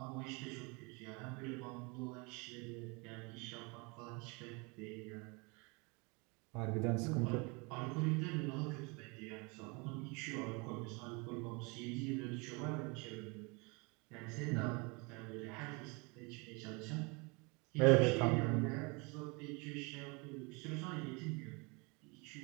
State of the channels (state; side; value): quieter; left; 29.5 dB